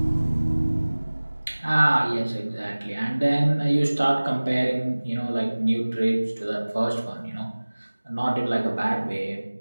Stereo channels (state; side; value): inverted; both; correlation -1.00